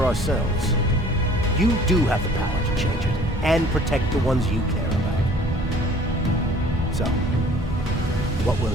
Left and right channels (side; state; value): both; normal; correlation 0.53